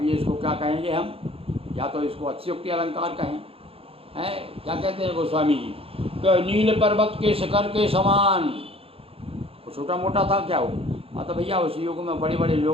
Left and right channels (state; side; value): late; left; 0.27 ms